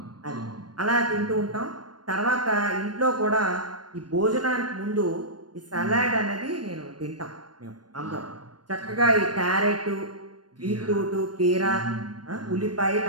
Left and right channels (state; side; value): late; left; 0.70 ms